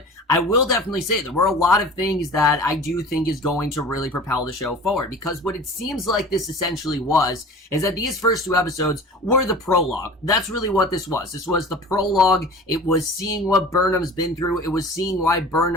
I will definitely say there were a lot of things that I do think is going to really propel the show forward, because what it seems like this essentially was, is that these first two episodes were the prologue. That's really what this was. This was the prologue. It was seeing what Burnham's been through. It was seeing why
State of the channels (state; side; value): normal; both; correlation 0.40